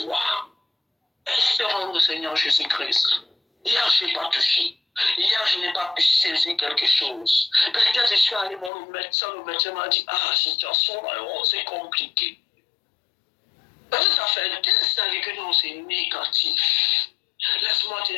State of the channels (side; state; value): right; drops out; at 8.7 s